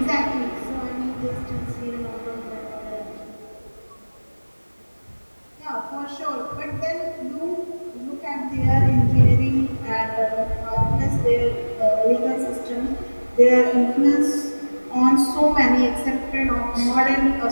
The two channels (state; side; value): inverted; both; correlation -1.00